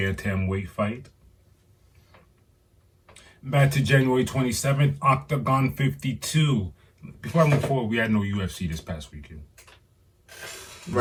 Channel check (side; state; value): both; identical; correlation 1.00